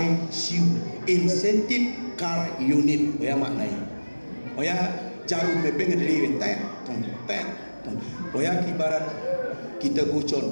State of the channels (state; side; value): inverted; both; correlation -1.00